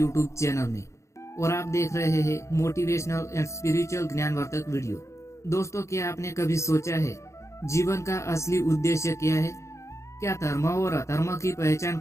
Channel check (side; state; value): right; late; 0.14 ms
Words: चैनल में और आप देख रहे हैं मोटिवेशनल एंड स्पिरिचुअल ज्ञानवर्धक वीडियो। दोस्तों, क्या आपने कभी सोचा है जीवन का असली उद्देश्य क्या है? क्या धर्म और अधर्म की पहचान